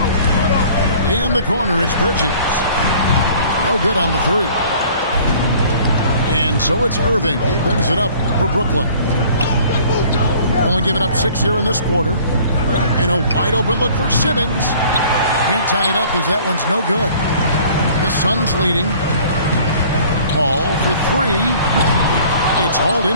In the corner, it's Bridges. No good on the 3. And so it's Irving. He brings it up for Brooklyn. Only giving up 6 here in this quarter. And a wide open look for Simmons. Can't tie it up as that one's no good. The Suns leading. Paul for 3. It's hauled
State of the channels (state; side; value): inverted; both; correlation -0.51